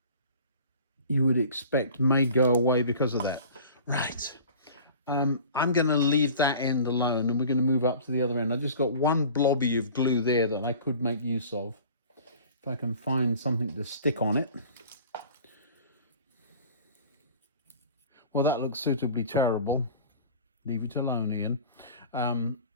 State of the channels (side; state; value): both; inverted; correlation -0.43